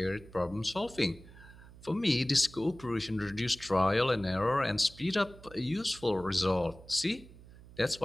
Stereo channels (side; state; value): right; noise; hum, 20 dB below the sound